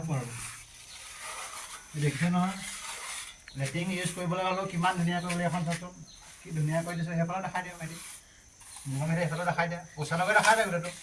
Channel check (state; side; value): identical; both; correlation 1.00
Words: আৰু। দেখিছে নহয় লেট্ৰিন ইউজ কৰিবলৈ হ'লেও কিমান ধুনীয়াকৈ বুলি এখন চাচোন, কি ধুনীয়া কৰি দিছোঁ। সেইফালে দেখাই দিওঁ মেলি মোৰ মেলি সেইফালে দেখাই দিয়া, ওচৰলৈকে দেখাই দিয়ে গোটেইটো।